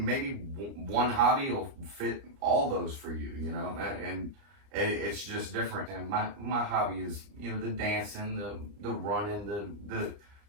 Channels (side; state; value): left; late; 29 ms